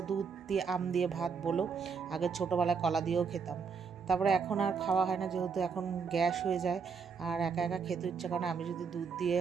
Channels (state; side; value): quieter; left; 5.8 dB